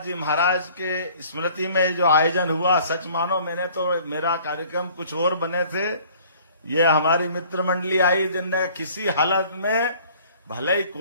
जी महाराज के स्मृति में जो आयोजन हुआ, सच मानो मैंने तो, मेरा कार्यक्रम कुछ और बने थे, ये हमारी मित्र मंडली आई जिनने किसी हालत में, भले ही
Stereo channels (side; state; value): both; inverted; correlation -0.53